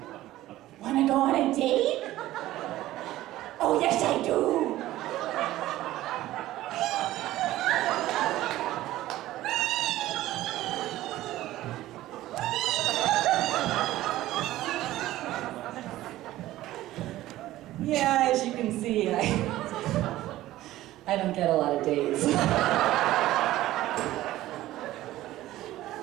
Wanna go on a date? Oh, yes, I do. Yeah, as you can see, I don't get a lot of dates.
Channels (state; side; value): quieter; left; 15.4 dB